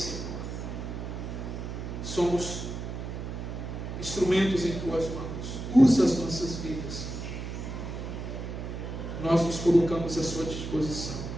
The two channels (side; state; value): right; noise; hum, 6 dB below the sound